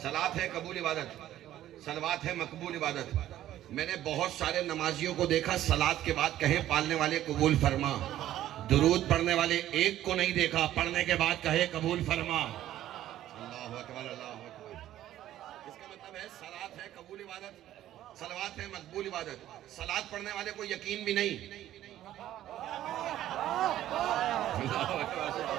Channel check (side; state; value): left; quieter; 13.0 dB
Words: सलात है कबूल इबादत, सलवात है मकबूल इबादत। मैंने बहुत सारे नमाजियों को देखा सलात के बाद कहे पालने वाले कबूल फरमा, दुरूद पढ़ने वाले एक को नहीं देखा पढ़ने के बाद कहे कबूल फरमा। अल्लाहु अकबर, अल्लाहु अकबर। इसका मतलब है सलात है कबूल इबादत, सलवात है मकबूल इबादत। सलात पढ़ने वाले को यकीन भी नहीं,